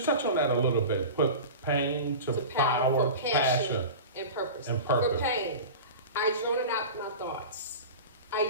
touch on that a little bit. Put pain to power, passion, and purpose. For pain, I journal out my thoughts.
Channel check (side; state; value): both; inverted; correlation -0.32